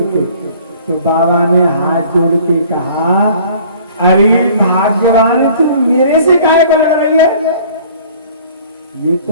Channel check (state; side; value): inverted; both; correlation -0.52